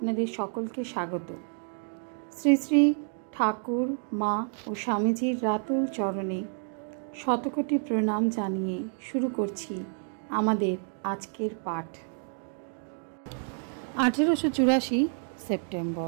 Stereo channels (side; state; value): left; silent; 56 dB below the other